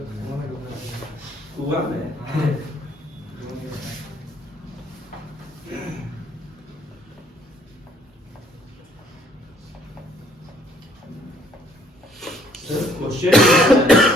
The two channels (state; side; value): normal; both; correlation 0.62